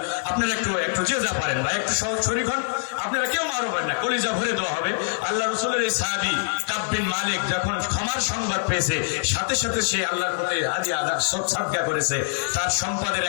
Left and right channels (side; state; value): right; silent; 62 dB below the other